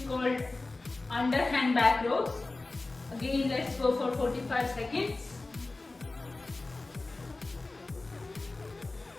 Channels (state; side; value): quieter; right; 3.3 dB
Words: called underhand back rows. Again, let's go for 45 seconds.